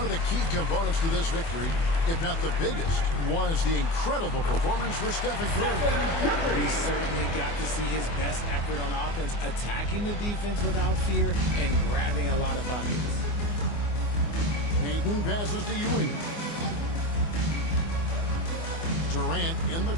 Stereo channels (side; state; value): right; late; 24 ms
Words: of the key components to this victory, if not the biggest, was the incredible performance for Stephen Curry. He certainly got to see his best effort on offense, attacking the defense without fear and grabbing a lot of buckets. Payton passes to Ewing. Durant in the